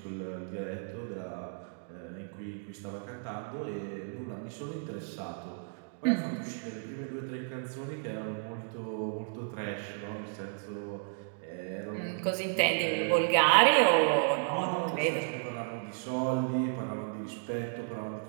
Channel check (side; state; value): left; silent; digital silence